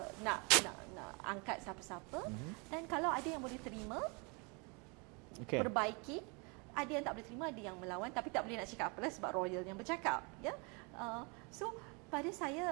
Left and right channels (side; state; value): left; quieter; 32.0 dB